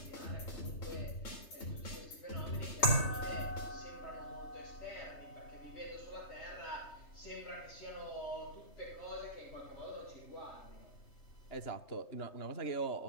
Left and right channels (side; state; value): right; late; 3.2 ms